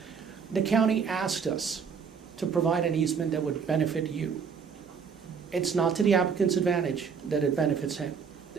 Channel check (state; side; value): quieter; left; 6.3 dB